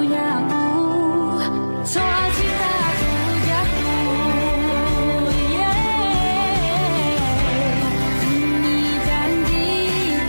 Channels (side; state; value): both; inverted; correlation -1.00